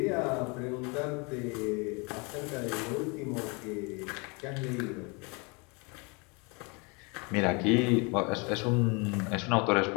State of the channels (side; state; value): right; quieter; 30.5 dB